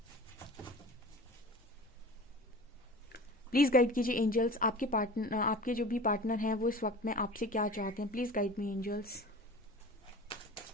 प्लीज़ गाइड कीजिए एंजल्स। आपके जो भी पार्टनर हैं वो इस वक्त में आपसे क्या चाहते हैं। Please guide me angels.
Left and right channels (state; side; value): normal; both; correlation 0.38